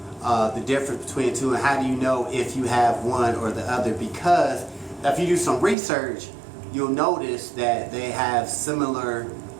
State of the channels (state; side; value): drops out; left; at 5.8 s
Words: the difference between the two, and how do you know if you have one or the other? Because if you do some research, you'll notice that they have similar